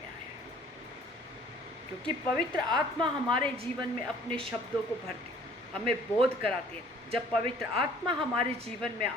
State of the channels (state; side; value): normal; both; correlation 0.54